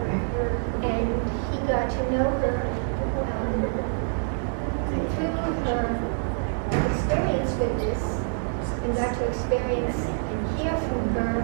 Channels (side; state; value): left; silent; digital silence